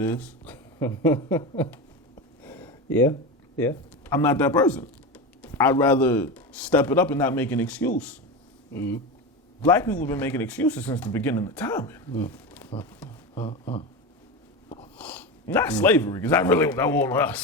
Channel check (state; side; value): normal; both; correlation 0.21